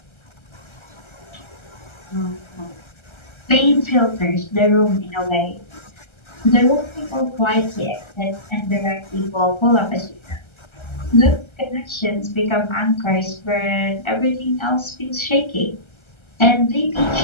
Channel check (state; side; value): late; right; 1.3 ms